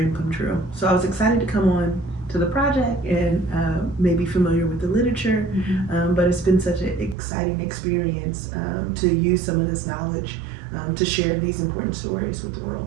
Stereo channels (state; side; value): drops out; left; at 7.2 s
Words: come true. So I was excited to come on to the project and maybe familiar with the literature. But it's been such an exciting experience to use some of this knowledge to share these important stories with the